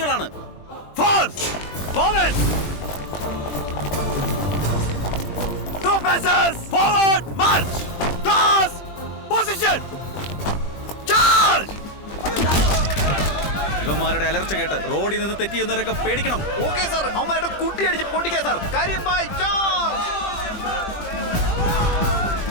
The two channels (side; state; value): right; late; 20 ms